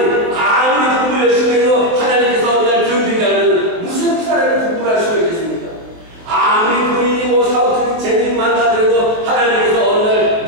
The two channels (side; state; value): left; late; 23 ms